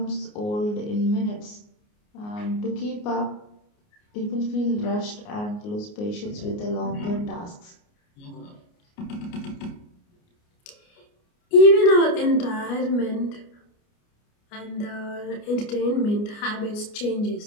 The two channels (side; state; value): right; late; 29 ms